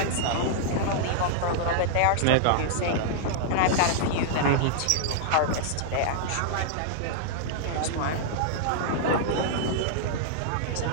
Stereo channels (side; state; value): both; different; correlation -0.01